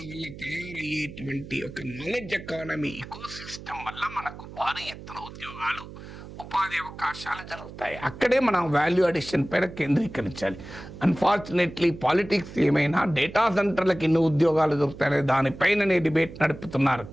వల్ల తయారయ్యేటువంటి ఒక నాలెడ్జ్ ఎకానమీ ఇకోసిస్టమ్ వల్ల మనకు భారీ ఎత్తున ఉద్యోగాలు, ఉపాధి అవకాశాలు జరుగుతాయి. అక్కడే మనం వాల్యూ అడిషన్ పైన కేంద్రీకరించాలి. అన్ఫార్చునేట్లీ పాలిటిక్స్ ఏమైనా డేటా సెంటర్లకు ఎన్ని ఉద్యోగాలు దొరుకుతాయనే దానిపైననే డిబేట్ నడుపుతున్నారు.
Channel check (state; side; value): noise; right; hum, 14 dB below the sound